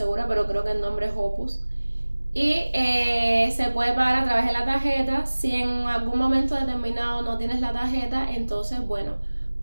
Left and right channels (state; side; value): inverted; both; correlation -1.00